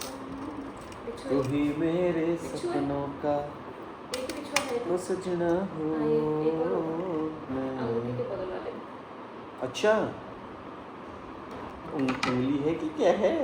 तू ही मेरे सपनों का तो सजना हो। अच्छा उंगली है कि क्या है?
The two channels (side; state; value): both; identical; correlation 1.00